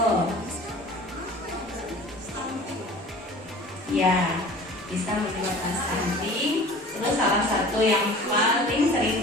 Ya, bisa menyebabkan stunting. Terus salah satu yang paling sering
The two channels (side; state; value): both; normal; correlation 0.43